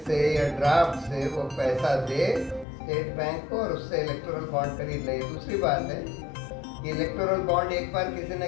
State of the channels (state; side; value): drops out; right; at 2.7 s